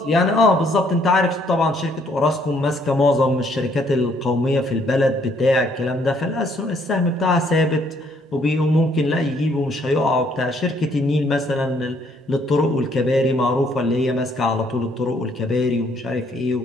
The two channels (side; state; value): both; normal; correlation 0.67